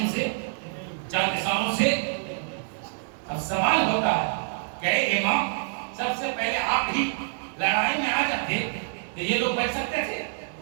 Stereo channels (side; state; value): left; silent; digital silence